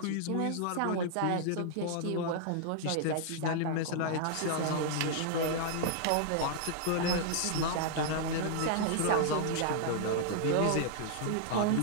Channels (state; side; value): different; both; correlation -0.01